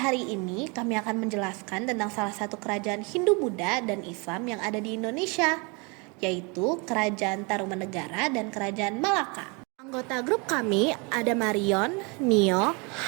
ini kami akan menjelaskan tentang salah satu kerajaan Hindu Buddha dan Islam yang ada di Indonesia, yaitu Kerajaan Tarumanegara dan Kerajaan Malaka. Anggota grup kami ada Marion, Nio,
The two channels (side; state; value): left; quieter; 30.5 dB